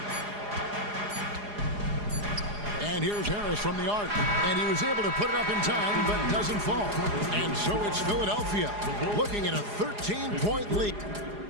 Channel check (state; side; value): late; left; 4.8 ms